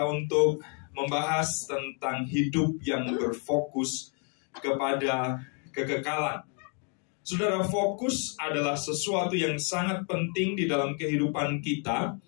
untuk membahas tentang hidup yang berfokus kepada kekekalan. Saudara, fokus adalah sesuatu yang sangat penting di dalam kehidupan kita.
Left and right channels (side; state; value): right; quieter; 39.4 dB